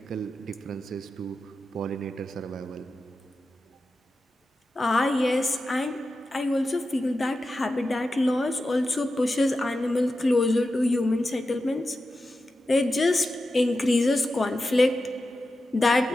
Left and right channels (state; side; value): normal; both; correlation 0.91